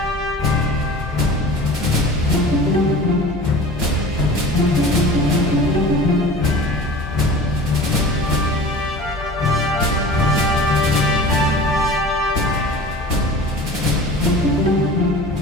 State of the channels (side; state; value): both; normal; correlation 0.40